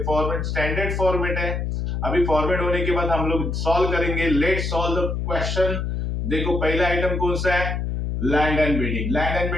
फॉर्मेट स्टैंडर्ड फॉर्मेट है। अभी फॉर्मेट होने के बाद हम लोग सॉल्व करेंगे। Let's solve the question. देखो पहला आइटम कौन सा है, land and building. Land and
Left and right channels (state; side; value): noise; left; hum, 2 dB below the sound